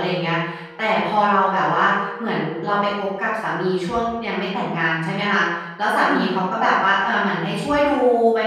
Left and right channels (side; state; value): both; identical; correlation 1.00